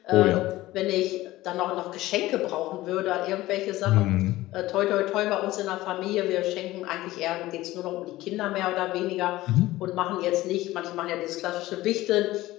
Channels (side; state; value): right; quieter; 17.1 dB